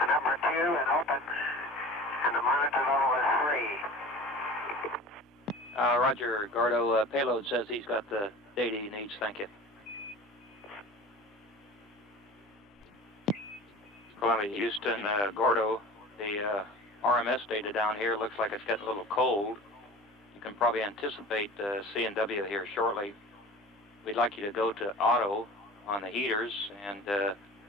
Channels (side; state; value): both; normal; correlation 0.38